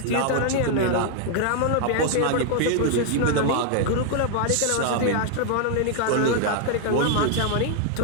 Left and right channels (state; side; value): different; both; correlation 0.00